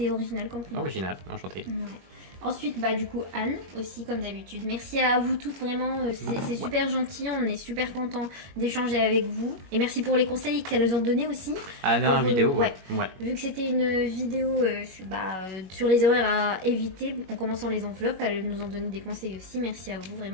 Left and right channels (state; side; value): late; left; 21 ms